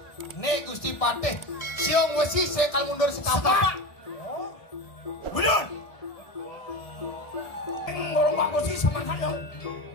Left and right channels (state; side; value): late; right; 1.6 ms